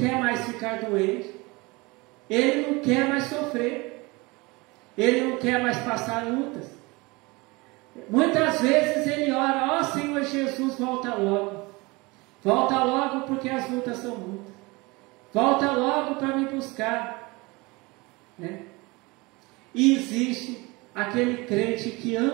mais ficar doente. Ele não quer mais sofrer. Ele não quer mais passar lutas. Muitas vezes ele ora: ó Senhor Jesus, volta logo. Volta logo porque as lutas são muitas. Volta logo para me buscar. E existe aquele crente que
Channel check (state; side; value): quieter; left; 24.6 dB